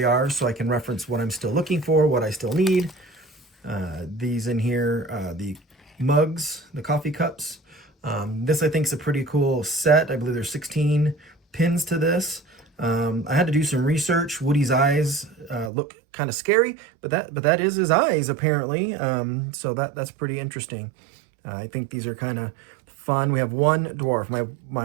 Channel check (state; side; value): drops out; left; at 15.7 s